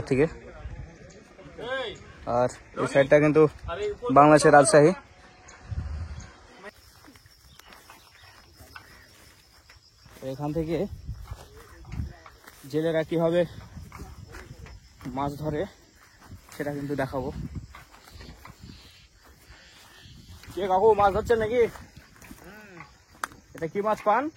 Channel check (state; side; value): identical; both; correlation 1.00